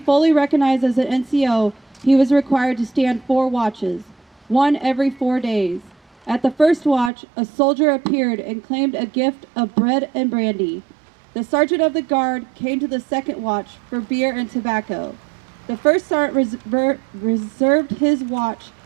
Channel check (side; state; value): left; drops out; at 7.1 s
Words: recognized as an NCO, he was required to stand 4 watches, one every 4 days. At the first watch, a soldier appeared and claimed a gift of bread and brandy. The sergeant of the guard came to the second watch for beer and tobacco. The first sergeant reserved his watch